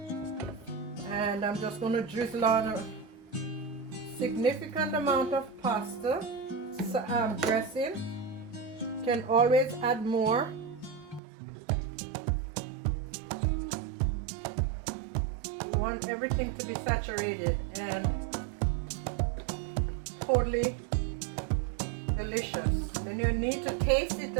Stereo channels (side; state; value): left; drops out; at 11.2 s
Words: And I'm just going to drizzle on a significant amount of pasta dressing. Can always add more. You want everything to be saturated and totally delicious. Then you need to taste it